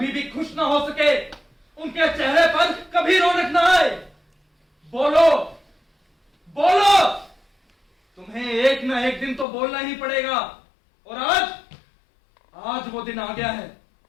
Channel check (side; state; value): right; drops out; at 9.5 s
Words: भी खुश ना हो सके, उनके चेहरे पर कभी रौनक ना आए? बोलो बोलो, तुम्हें एक ना एक दिन तो बोलना ही पड़ेगा। और आज वो दिन आ गया है।